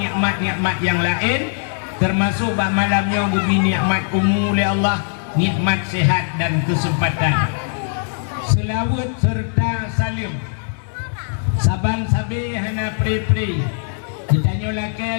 nikmat-nikmat yang lain, termasuk bah malamnya gubi nikmat umum oleh Allah, nikmat sehat dan kesempatan. Selawat serta salim. Saban sabi hana pri-pri. Ditanya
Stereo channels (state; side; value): silent; right; 66 dB below the other